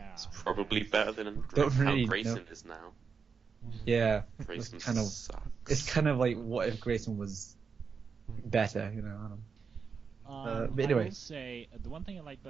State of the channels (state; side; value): quieter; left; 5.7 dB